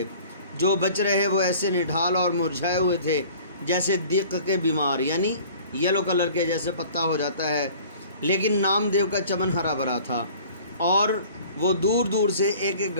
جو بچ رہے وہ ایسے نڈھال اور مرجھائے ہوئے تھے جیسے دیق کے بیمار، یعنی یلو کلر کے جیسے پتا ہو جاتا ہے، لیکن نامدیو کا چمن ہرا بھرا تھا، اور وہ دور دور سے ایک ایک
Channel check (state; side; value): inverted; both; correlation -0.48